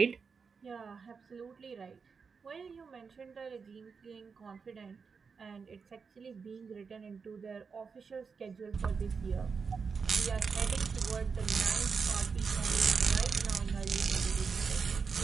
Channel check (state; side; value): quieter; left; 5.4 dB